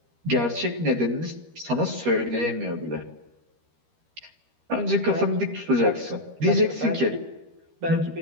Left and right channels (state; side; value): late; left; 13 ms